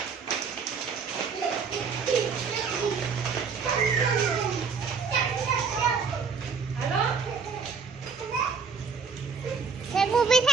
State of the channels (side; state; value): left; quieter; 5.6 dB